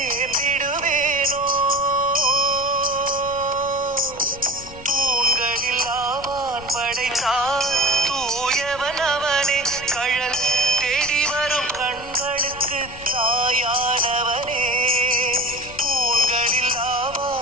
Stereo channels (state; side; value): noise; left; rumble, 17 dB below the sound